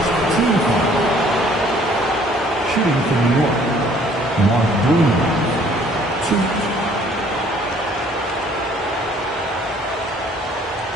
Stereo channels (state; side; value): normal; both; correlation 0.58